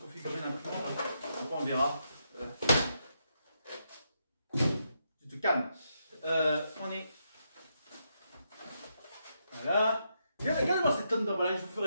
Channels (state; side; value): inverted; both; correlation -0.81